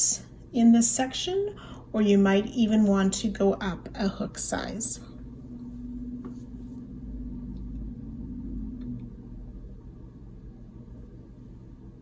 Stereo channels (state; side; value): identical; both; correlation 1.00